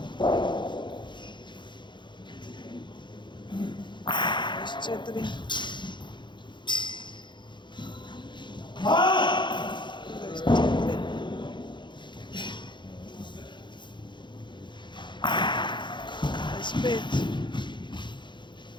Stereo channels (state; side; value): late; right; 0.23 ms